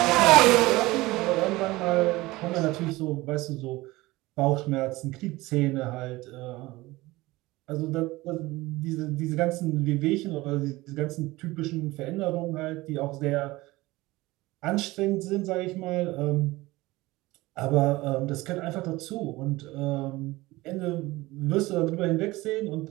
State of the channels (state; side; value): quieter; left; 19.9 dB